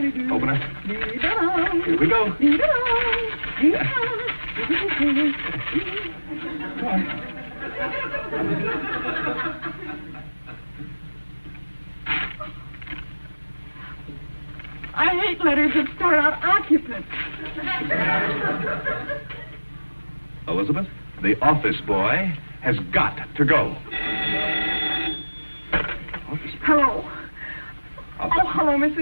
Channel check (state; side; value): inverted; both; correlation -1.00